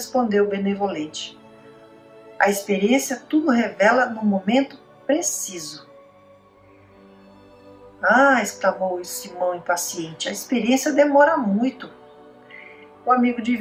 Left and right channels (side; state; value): both; identical; correlation 1.00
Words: benevolente: A experiência tudo revela no momento preciso. Ah, exclamou Simão impaciente, a experiência demora muito. O amigo